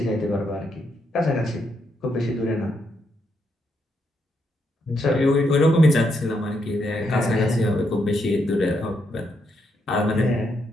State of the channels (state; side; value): normal; both; correlation 0.78